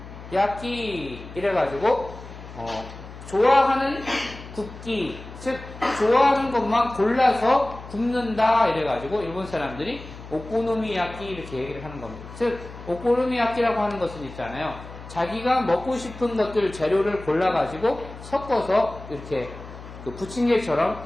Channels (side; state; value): left; noise; hum, 15 dB below the sound